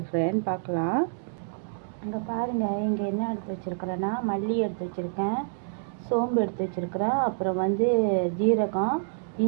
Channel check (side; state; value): left; silent; digital silence